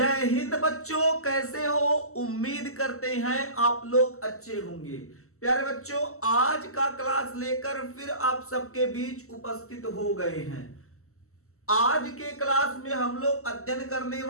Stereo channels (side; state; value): right; late; 0.63 ms